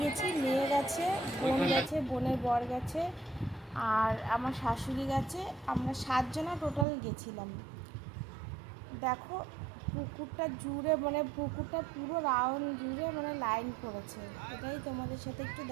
গেছি, মেয়ে গেছে, বোন গেছে, বোনের বর গেছে, আর আমার শাশুড়ি গেছে। আমরা 7 জনা টোটাল গেছিলাম। দেখো, পুকুরটা জুড়ে, মানে পুকুরটা পুরো রাউন্ড জুড়ে মানে লাইন করেছে। এটাই তোমাদের সাথে একটু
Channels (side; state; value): left; drops out; at 6.9 s